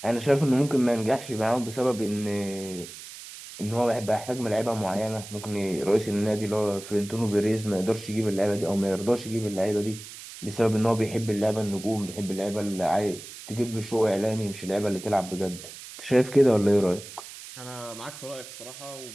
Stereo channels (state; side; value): noise; right; hiss, 14 dB below the sound